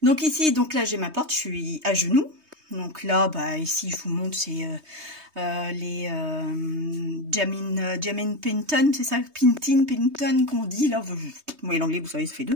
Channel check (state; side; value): late; left; 3.2 ms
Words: Donc ici, donc là j'ai ma porte, je suis à genoux. Donc là, bah ici je vous montre, c'est les Jamin Pinton, c'est ça, Pinton qu'on dit là. Moi l'anglais, vous savez, ça fait 2.